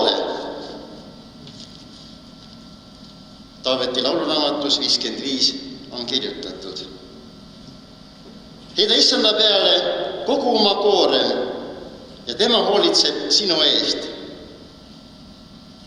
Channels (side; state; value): both; identical; correlation 1.00